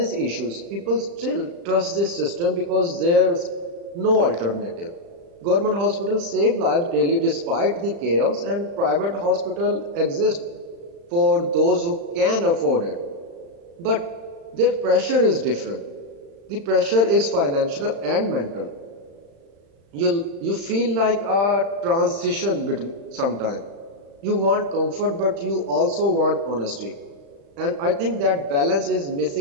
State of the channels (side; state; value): left; late; 35 ms